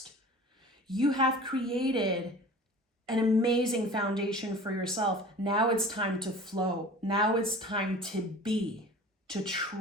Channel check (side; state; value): both; normal; correlation 0.41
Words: You have created an amazing foundation for yourself. Now it's time to flow. Now it's time to be, to